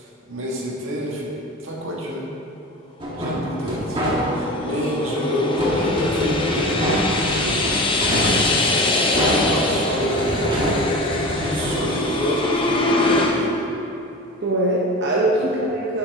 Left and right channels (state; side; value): normal; both; correlation 0.31